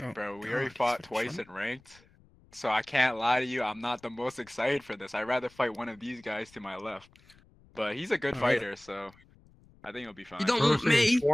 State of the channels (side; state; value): left; noise; rumble, 28 dB below the sound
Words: Oh, Bro, we God, already he's fought fucking twice funny. in ranked. So I can't lie to you, I'm not the most excited for this. I'd rather fight one of these guys to my left. But he's a good Oh, really? fighter, so I think it'll be fine. You don't bro want saying me. You